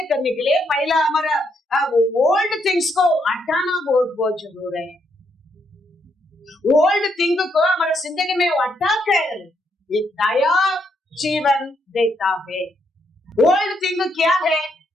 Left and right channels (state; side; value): normal; both; correlation 0.76